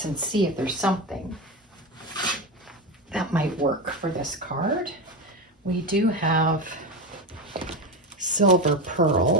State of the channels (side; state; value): both; normal; correlation 0.17